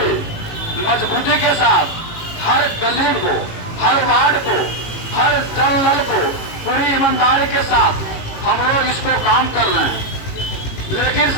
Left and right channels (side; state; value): right; late; 18 ms